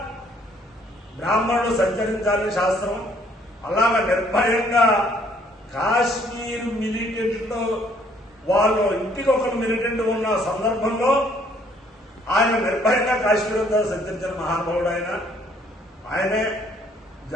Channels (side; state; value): both; normal; correlation 0.64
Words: బ్రాహ్మణుడు సంచరించాలని శాస్త్రం. అలాగా నిర్భయంగా కాశ్మీర్ మిలిటెంట్ వాళ్ళు ఇంటికి ఒకరు మిలిటెంట్ ఉన్న సందర్భంలో ఆయన నిర్భయంగా కాశ్మీర్ అంతా సంచరించిన మహానుభావుడు ఆయనే